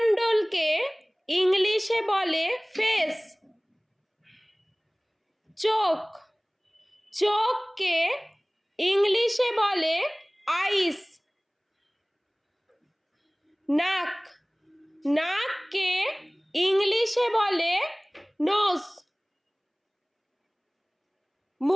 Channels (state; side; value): identical; both; correlation 1.00